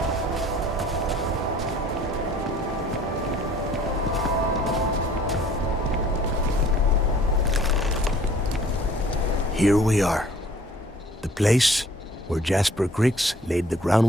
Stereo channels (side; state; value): both; normal; correlation 0.54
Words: Here we are. The place where Jasper Griggs laid the